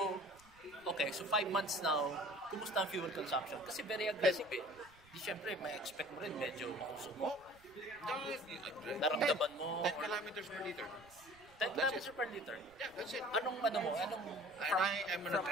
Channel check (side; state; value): right; noise; rumble, 26 dB below the sound